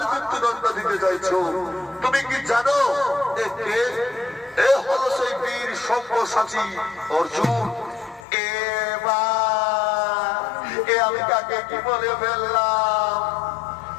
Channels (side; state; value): right; drops out; at 8.2 s